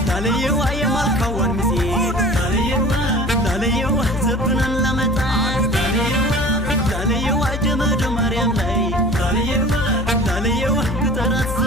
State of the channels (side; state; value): left; noise; hum, 5 dB below the sound